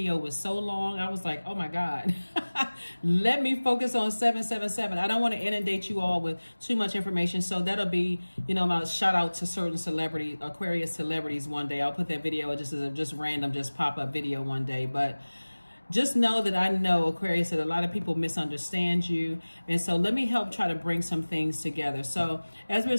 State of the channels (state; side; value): inverted; both; correlation -1.00